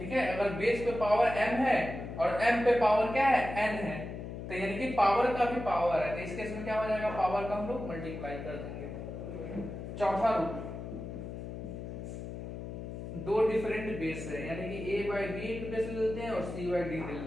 है। अगर बेस पे पावर m है और m पे पावर क्या है, n है, तो यानी कि पावर का भी पावर है, तो इस केस में क्या हो जाएगा, पावर का हम लोग मल्टीप्लाई कर देंगे। चौथा रूल, दो डिफरेंट बेस है, यानी कि a by b into base ले लेते हैं और c बाई डी ले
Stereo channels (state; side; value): noise; left; hum, 8 dB below the sound